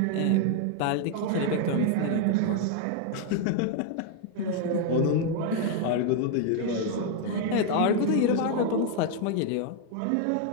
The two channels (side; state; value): both; different; correlation 0.00